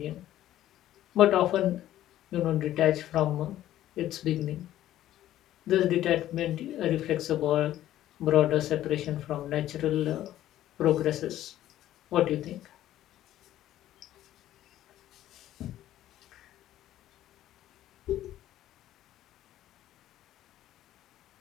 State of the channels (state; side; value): quieter; right; 13.2 dB